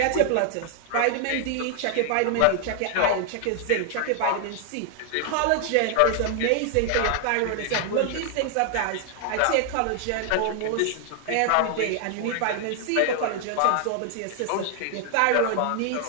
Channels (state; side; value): different; both; correlation 0.00